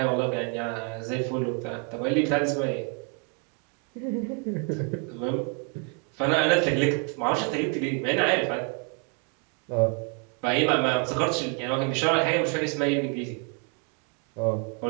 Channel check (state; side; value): quieter; left; 38.6 dB